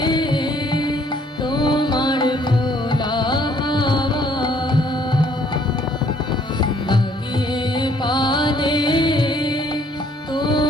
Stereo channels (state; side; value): normal; both; correlation 0.63